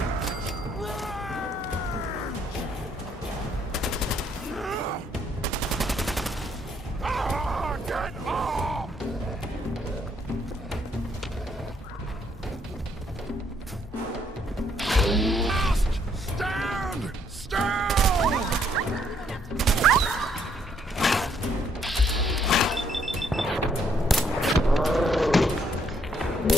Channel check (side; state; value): both; normal; correlation 0.69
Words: Ah, get off! Stand still!